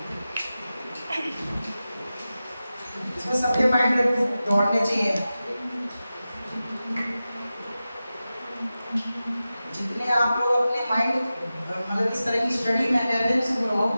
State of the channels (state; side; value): inverted; both; correlation -0.94